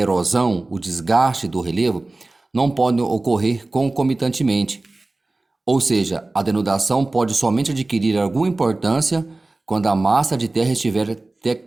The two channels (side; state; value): left; quieter; 3.0 dB